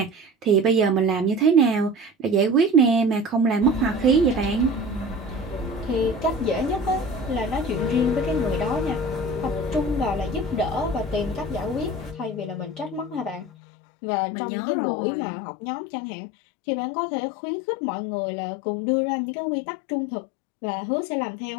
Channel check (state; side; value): drops out; right; at 13.5 s